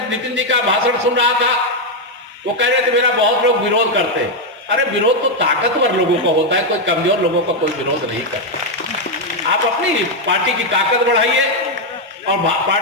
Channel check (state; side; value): normal; both; correlation 0.02